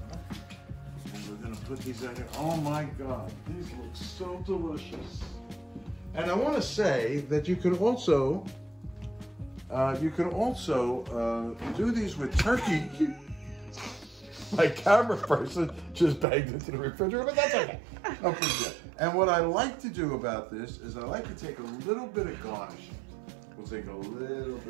them. And we're gonna put these out here. Oh my God, these look so delicious. And I want to say that you could also do these with turkey. My camera person just banged into the refrigerator, but that's okay. No big deal. And what I like to do about this is I like to take a little bit of garnishing. We'll take a little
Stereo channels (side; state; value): left; drops out; at 16.2 s